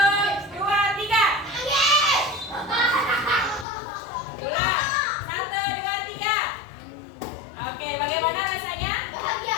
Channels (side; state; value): right; drops out; at 3.7 s